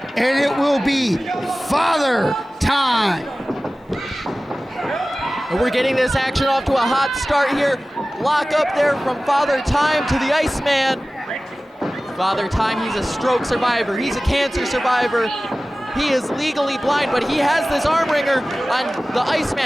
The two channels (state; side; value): normal; both; correlation 0.97